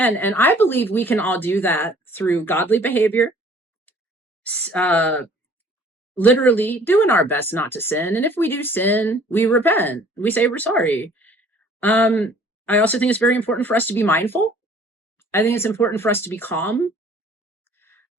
And I believe we can all do that through godly behavior, uh, literally doing our best not to sin. And if we do sin, we repent. We say we're sorry. I also think it's very important for us to be mindful. I think it's important for us to be calm.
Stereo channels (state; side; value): normal; both; correlation 0.54